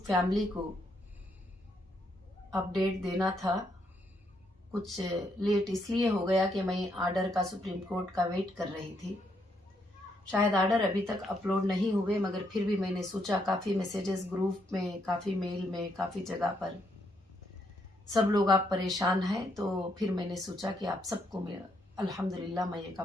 फैमिली को अपडेट देना था। कुछ लेट इसलिए हो गया कि मैं आर्डर का सुप्रीम कोर्ट का वेट कर रही थी। शायद आर्डर अभी तक अपलोड नहीं हुए, मगर फिर भी मैंने सोचा, काफ़ी मैसेजेस ग्रुप में, काफ़ी मेल में, काफ़ी जगह पर सब लोग आप परेशान हैं, तो फिर मैंने सोचा कि आप सबको मैं अल्हम्दुलिल्लाह मैं एक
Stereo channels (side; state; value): both; normal; correlation 0.76